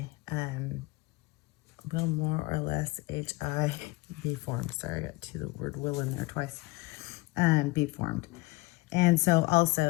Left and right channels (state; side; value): quieter; right; 21.4 dB